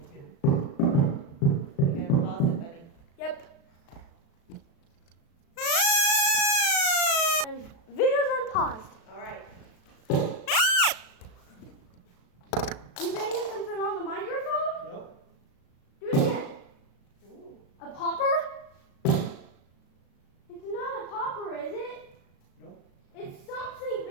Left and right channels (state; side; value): late; right; 36 ms